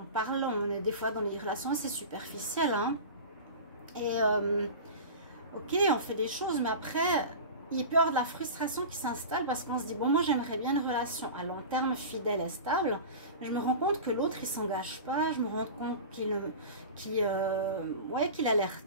parle, on est des fois dans les relations assez superficielles. Hein. Et ok, on fait des choses, mais après, il peut y avoir de la frustration qui s'installe parce qu'on se dit, bon, moi j'aimerais bien une relation à long terme, fidèle et stable, mais je me rends compte que l'autre il s'engage pas, je me rends compte qu'il a l'air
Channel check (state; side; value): inverted; both; correlation -0.32